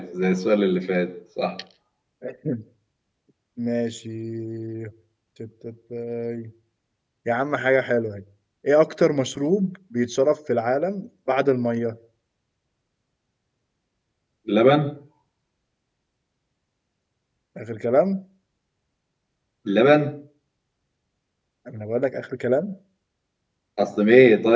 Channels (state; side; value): identical; both; correlation 1.00